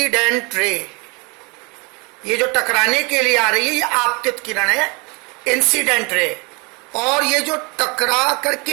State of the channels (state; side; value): quieter; left; 29.7 dB